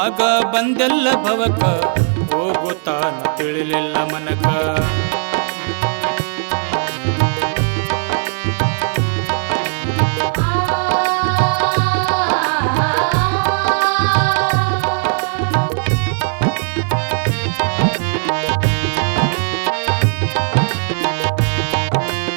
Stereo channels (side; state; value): left; silent; digital silence